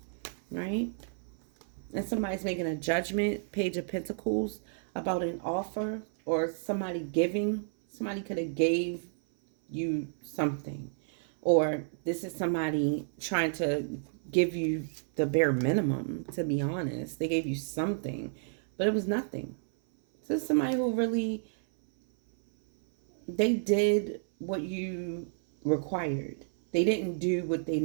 right? And somebody's making a judgment, Page of Pentacles, about an offer or somebody giving. Somebody could have gave you something. Or this is somebody trying to give you the bare minimum, to be honest. They gave you something, but it was nothing. So this is somebody who really, they did what you required. They didn't do what they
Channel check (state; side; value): silent; left; 57 dB below the other